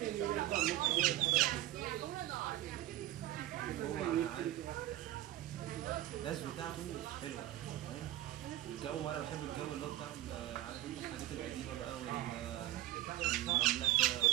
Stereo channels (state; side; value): quieter; left; 14.7 dB